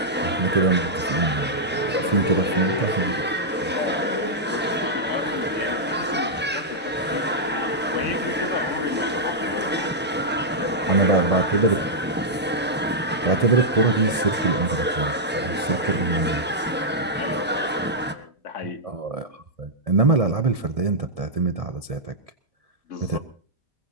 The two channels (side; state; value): both; normal; correlation -0.08